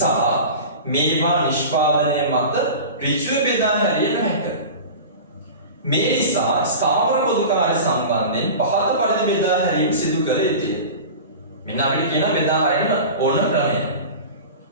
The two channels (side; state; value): both; inverted; correlation -0.33